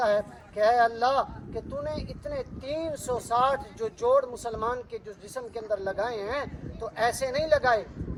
ہے کہ اے اللہ کہ تو نے اتنے 360 جو جوڑ مسلمان کے جو جسم کے اندر لگائے ہیں تو ایسے نہیں لگائے,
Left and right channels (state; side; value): identical; both; correlation 1.00